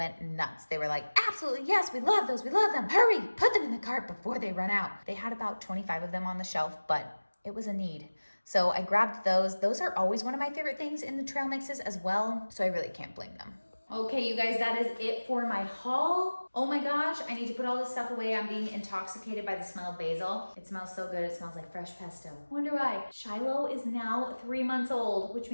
nuts. They were like, absolutely, yes, we love those. We love them. Hurry, put them in the cart before they run out. They had about 25 of them on the shelf, but it was a need. So I grabbed those. Those are always one of my favorite things in the trail mixes as well. So I really can't blame them. Okay, you guys, that is it for my haul. Oh my gosh, I need to put all this stuff away. I'm being intoxicated by the smell of basil. It smells so good. It smells like fresh pesto. Wonder why. Shiloh is now 3 months old, which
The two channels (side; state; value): both; inverted; correlation -1.00